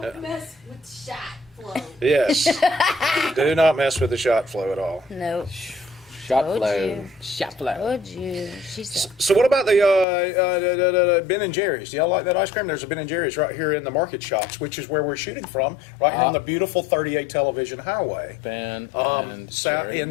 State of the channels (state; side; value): drops out; right; at 10.1 s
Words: mess with shot flow. Yes. Do not mess with the shot flow at all. Nope. Shot Told flow. you. Shot flow. Told you. She said. So what about the Ben and Jerry's? Do y'all like that ice cream? There's a Ben and Jerry's right here in the market shops, which is where we're shooting from, right here on the beautiful 38 Television Highway, Ben and Jerry's in